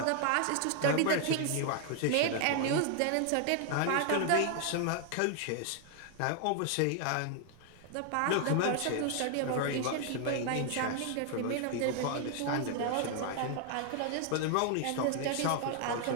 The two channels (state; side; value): different; both; correlation 0.00